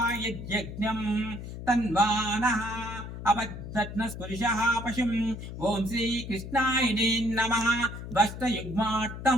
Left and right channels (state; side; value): noise; left; hum, 9 dB below the sound